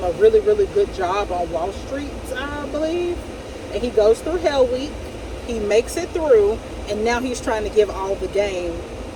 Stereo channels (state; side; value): identical; both; correlation 1.00